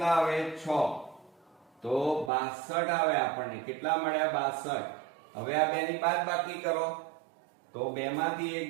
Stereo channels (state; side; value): drops out; left; at 2.3 s